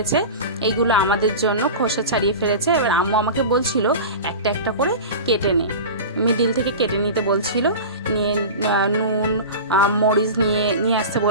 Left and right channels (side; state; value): both; inverted; correlation -0.30